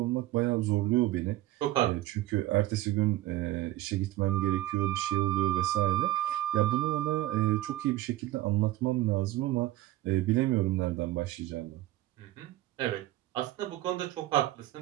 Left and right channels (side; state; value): left; quieter; 15.7 dB